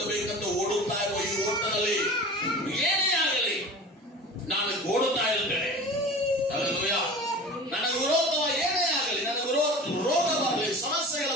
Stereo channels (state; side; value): normal; both; correlation 0.37